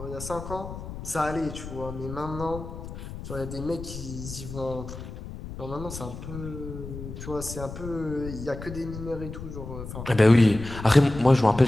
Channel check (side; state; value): left; noise; rumble, 10 dB below the sound